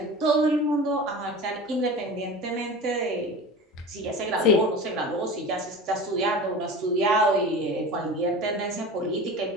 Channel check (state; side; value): normal; both; correlation 0.33